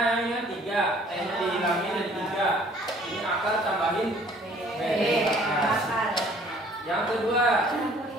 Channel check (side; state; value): both; normal; correlation 0.56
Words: yang ini 3, T-nya dihilangin jadi 3. Ini akar tambahin B. Yang kedua,